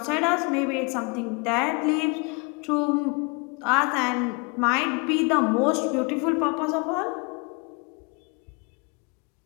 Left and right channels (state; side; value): quieter; right; 31.3 dB